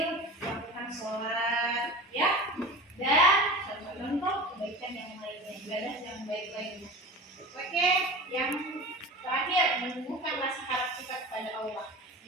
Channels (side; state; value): both; normal; correlation 0.33